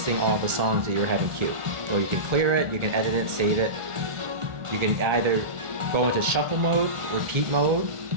all the songs that you're having queued. So you can clear it, you can edit it, save it. You can either go into shuffle mode, repeat mode.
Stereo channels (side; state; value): left; late; 1.4 ms